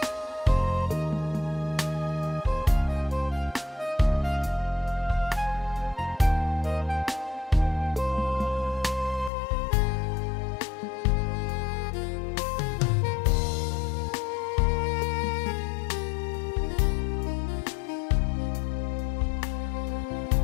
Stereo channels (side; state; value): right; drops out; at 9.3 s